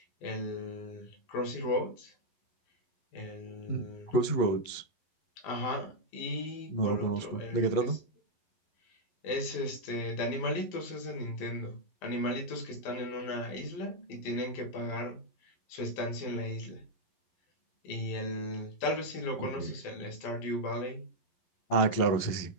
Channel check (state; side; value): late; right; 11 ms